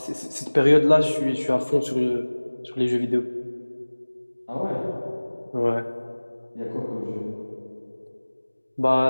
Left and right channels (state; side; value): inverted; both; correlation -1.00